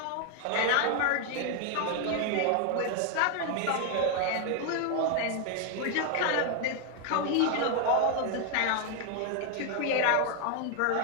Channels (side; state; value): both; different; correlation 0.00